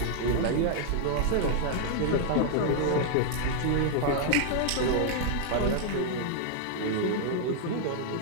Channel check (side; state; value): both; different; correlation 0.00